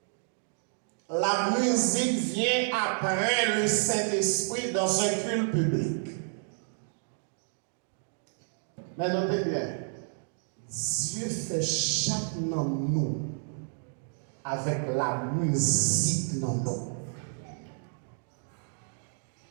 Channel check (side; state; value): left; silent; 58 dB below the other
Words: la musique vient après le Saint-Esprit dans un culte public. Mais notez bien, Dieu fait chaque dans nous avec la musique dans nous.